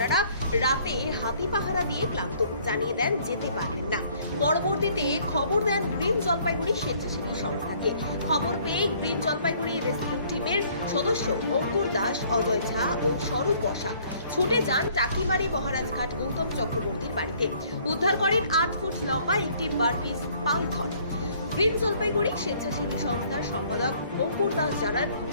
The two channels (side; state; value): both; inverted; correlation -0.59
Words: রাতে হাতি পাহারা দিয়ে ক্লান্ত, জানিয়ে দেন যেতে পারবেন না। পরবর্তীতে খবর দেন গ্রিন জলপাইগুড়ি স্বেচ্ছাসেবী সংস্থাকে। খবর পেয়ে গ্রিন জলপাইগুড়ি রেস্কিউ টিমের সদস্য অঙ্কুর দাস, অজয় ঝা ও স্বরূপ বসাক ছুটে যান টাকিমারি মহারাজঘাট গৌতম চক্রবর্তীর বাড়িতে। উদ্ধার করেন 8 ফুট লম্বা একটি বারপিস পাইথন। গ্রিন জলপাইগুড়ি স্বেচ্ছাসেবী সংস্থার সম্পাদক অঙ্কুর দাস জানান,